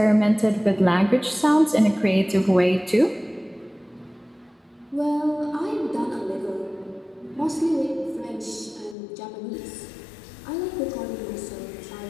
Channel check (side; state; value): right; drops out; at 9.0 s